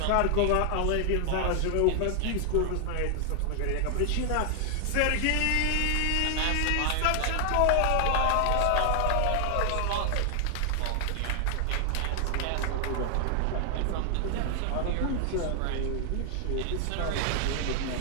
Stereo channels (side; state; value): both; different; correlation 0.00